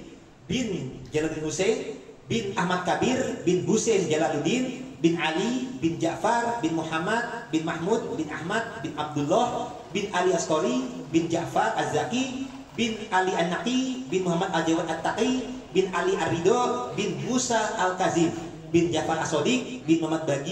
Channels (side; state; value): both; identical; correlation 1.00